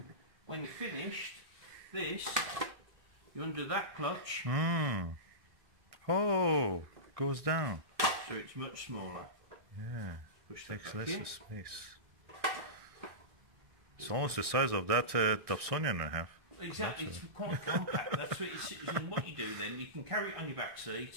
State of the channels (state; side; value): late; left; 1.6 ms